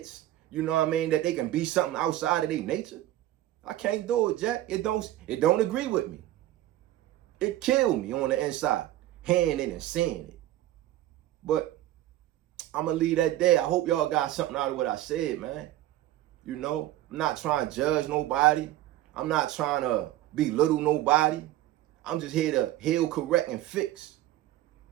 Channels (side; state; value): left; quieter; 14.5 dB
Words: you know what I mean, that they can be something outside of their nature. I can't do it, Jack. It don't agree with me. It killed me on the inside, hearing it and seeing it. But I'm going to leave that there. I hope y'all got something out of what I said, man. You know, I'm not trying to judge nobody. I'm not trying to belittle nobody. I'm just here to heal, correct, and fix